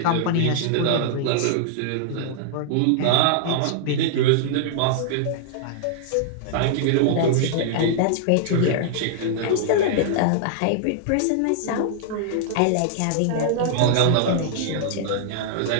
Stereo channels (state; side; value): different; both; correlation -0.01